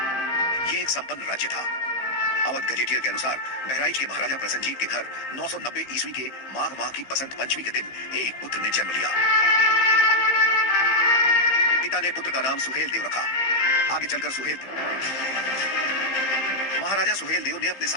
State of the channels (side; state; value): right; late; 15 ms